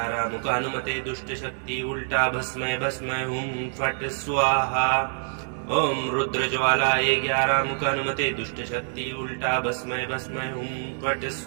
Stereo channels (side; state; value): left; silent; 56 dB below the other